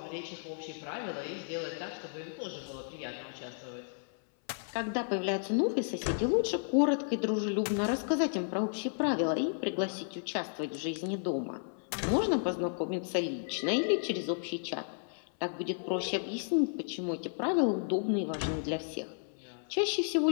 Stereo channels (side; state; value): right; silent; 56 dB below the other